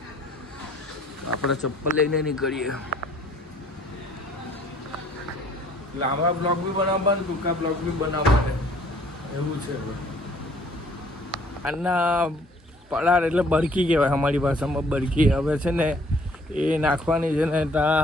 આપણે ચપ્પલ લઈને નીકળીએ લાંબા બ્લોગ બી બનાવવા ને ટૂંકા બ્લોગ બી બનાવવા એવું છે આના પડાર એટલે બરકી કહેવાય અમારી ભાષામાં બરકી હવે છે ને એ નાખવાની છે ને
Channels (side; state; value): both; normal; correlation 0.58